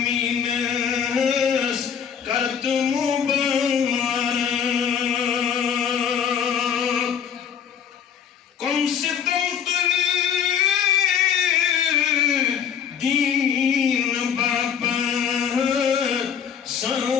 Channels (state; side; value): quieter; right; 7.9 dB